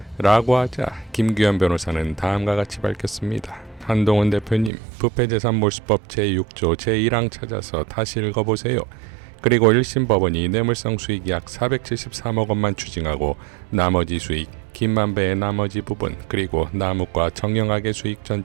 라고 하자 김규현 변호사는 다음과 같이 밝혔습니다. 한동훈 대표님, 부패재산 몰수법 제6조 제1항 찾아서 다시 읽어보세요. 그리고 1심 법원이 뇌물성 수익 약 473억 원만 추징하고 나머지 수익, 김만배의 나머지 부분, 그리고 남욱과 정영학의 수익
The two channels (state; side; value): drops out; left; at 4.7 s